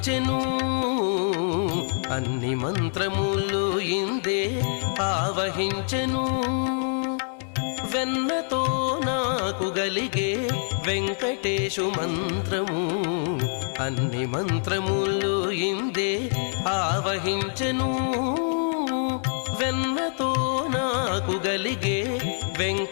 అన్ని మంత్రములు ఇందే ఆవహించెను వెన్నతో నాకు గలిగే వెంకటేశు మంత్రము అన్ని మంత్రములు ఇందే ఆవహించెను వెన్నతో నాకు గలిగే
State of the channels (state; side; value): silent; right; digital silence